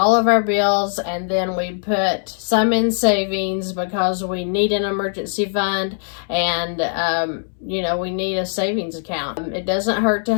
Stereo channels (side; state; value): right; silent; digital silence